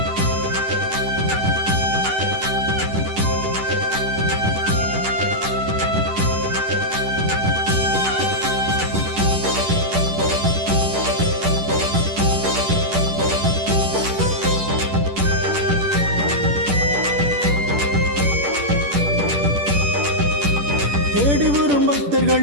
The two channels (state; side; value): late; left; 10 ms